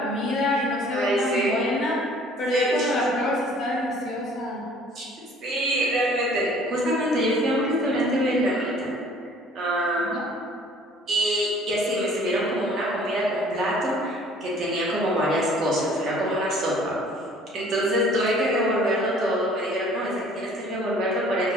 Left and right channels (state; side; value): normal; both; correlation 0.53